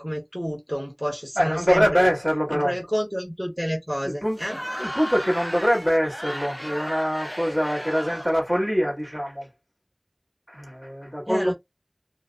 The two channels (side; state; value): both; identical; correlation 1.00